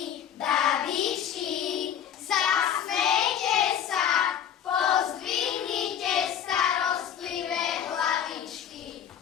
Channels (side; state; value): right; quieter; 9.2 dB